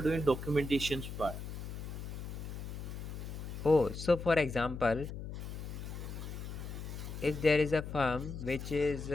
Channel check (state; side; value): noise; left; hum, 7 dB below the sound